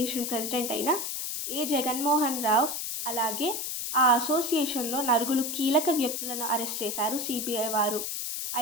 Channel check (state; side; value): noise; left; hiss, 3 dB below the sound